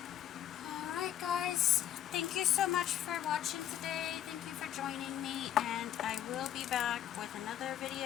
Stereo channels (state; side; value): quieter; right; 11.0 dB